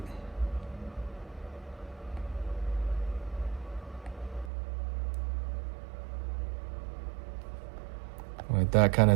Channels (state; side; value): drops out; left; at 4.5 s